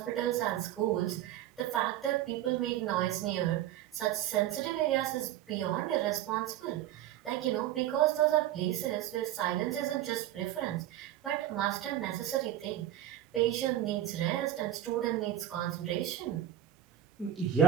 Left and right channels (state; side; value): quieter; left; 12.5 dB